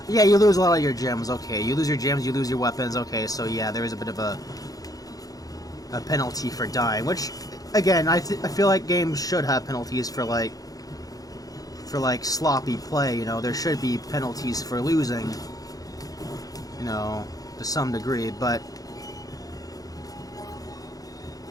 Yeah, you lose a lot of your gems. Okay, you lose your gems, you lose your weapons. Okay, so yeah, there is a bit of a penalty for dying, which... Again, I feel like games should have penalties for like sloppy play. You know, there should be penalties for losing. You know, to some degree, but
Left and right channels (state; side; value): late; right; 0.18 ms